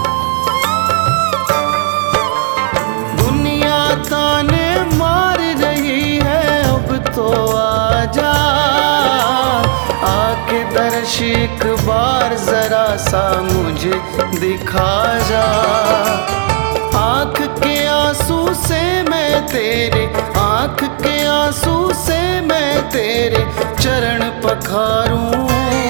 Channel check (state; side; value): silent; left; digital silence